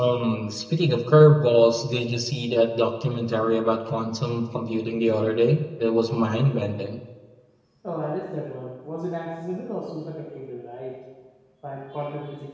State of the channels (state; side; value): identical; both; correlation 1.00